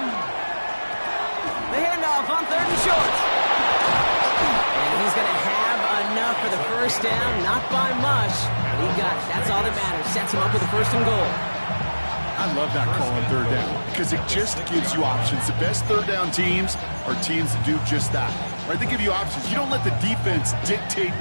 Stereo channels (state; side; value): inverted; both; correlation -1.00